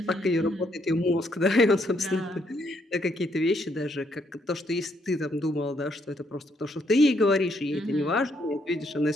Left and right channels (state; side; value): normal; both; correlation 0.73